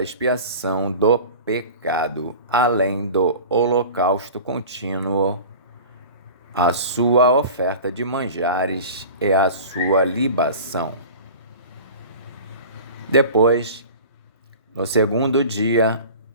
expiação do pecado, além do holocausto contínuo, a sua oferta de manjares e a sua libação. Depois, no 2º dia,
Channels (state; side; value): inverted; both; correlation -0.38